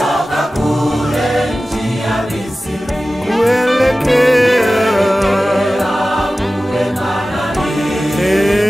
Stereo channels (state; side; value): normal; both; correlation 0.96